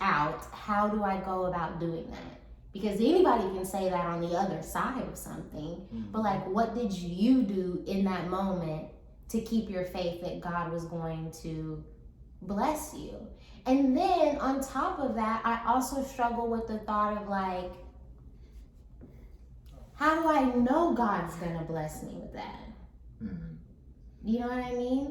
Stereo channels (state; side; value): identical; both; correlation 1.00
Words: out, how do I go about doing that? Because anybody can say that on the other side of something, but like, what did you do in that moment to keep your faith that God was going to bless you? And then on top of that, I also struggle with the thought of like, how do I know God's gonna bless me with that? You know what I